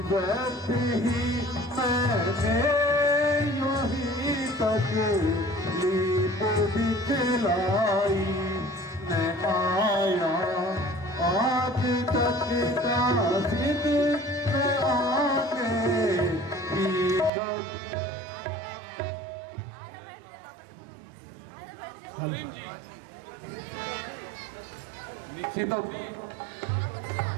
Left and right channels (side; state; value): left; drops out; at 17.3 s